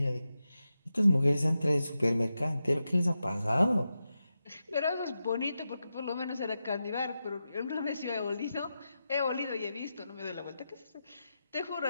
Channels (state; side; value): inverted; both; correlation -0.90